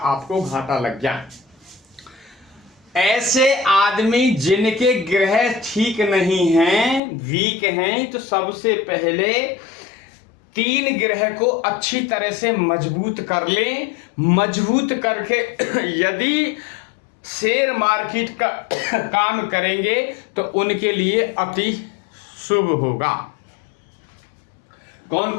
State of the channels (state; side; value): drops out; right; at 7.0 s